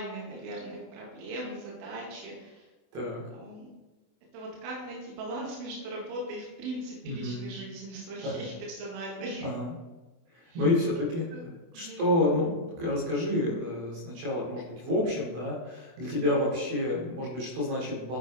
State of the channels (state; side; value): late; left; 24 ms